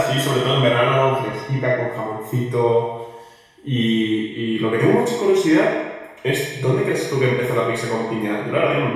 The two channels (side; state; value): both; identical; correlation 1.00